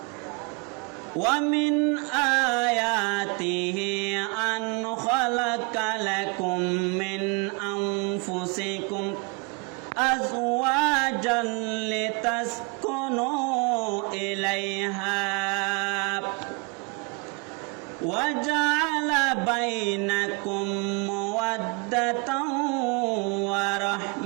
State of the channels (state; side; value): quieter; left; 31.4 dB